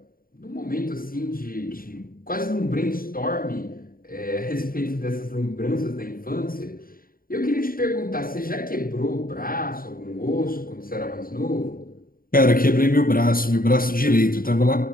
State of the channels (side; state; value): right; late; 0.42 ms